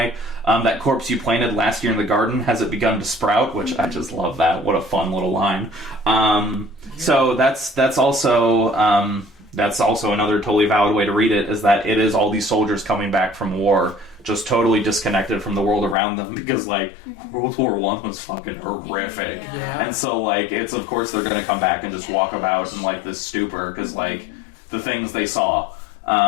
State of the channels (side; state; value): right; drops out; at 16.0 s